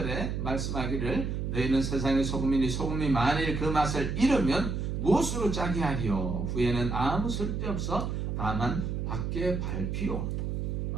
말씀하기를 너희는 세상의 소금이니 소금이 만일 그 맛을 잃으면 무엇으로 짜게 하리요? 후에는 아무 쓸데없어 다만 밖에 밟히고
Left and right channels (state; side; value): noise; right; hum, 2 dB below the sound